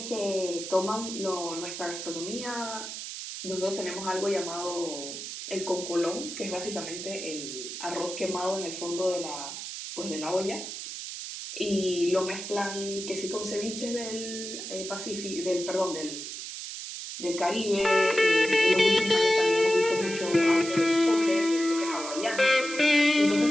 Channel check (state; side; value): noise; right; hiss, 8 dB below the sound